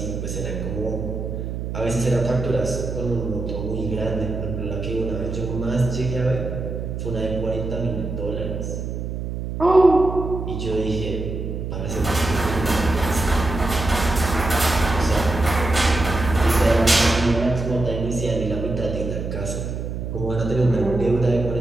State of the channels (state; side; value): noise; right; hum, 5 dB below the sound